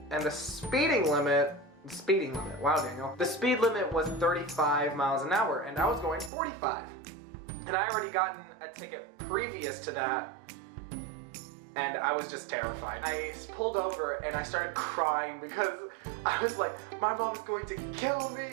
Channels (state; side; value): drops out; left; at 6.3 s